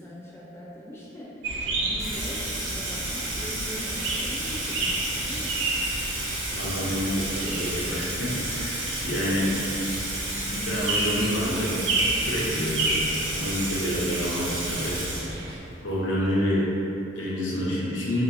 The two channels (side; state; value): both; normal; correlation 0.37